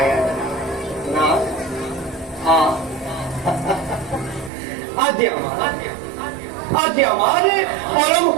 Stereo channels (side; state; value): left; drops out; at 4.5 s